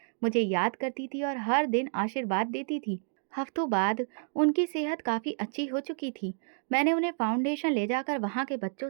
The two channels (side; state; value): left; silent; digital silence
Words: मुझे याद करती थी और हर दिन आशीर्वाद देती थी। हफ्तों बाद उनकी सेहत काफ़ी अच्छी हो चुकी थी। मैंने उन्हें फाउंडेशन ले जाकर वहाँ के बच्चों